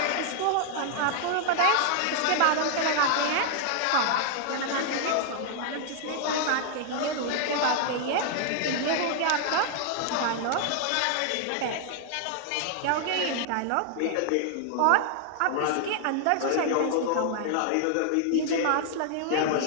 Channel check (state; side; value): different; both; correlation 0.00